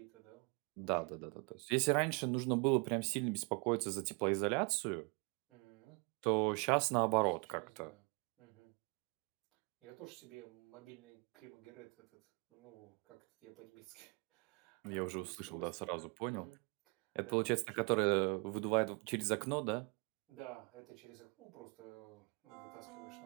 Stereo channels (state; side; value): quieter; left; 32.2 dB